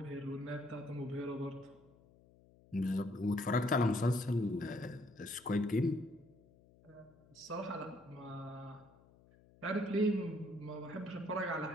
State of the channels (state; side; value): noise; left; hum, 26 dB below the sound